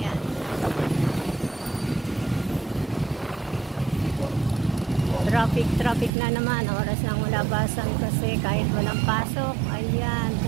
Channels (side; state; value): left; drops out; at 6.1 s